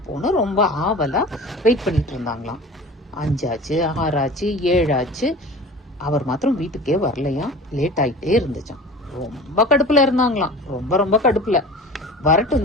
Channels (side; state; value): both; normal; correlation 0.38